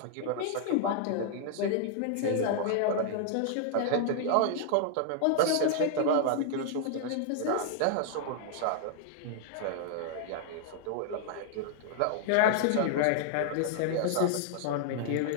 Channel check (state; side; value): different; both; correlation -0.01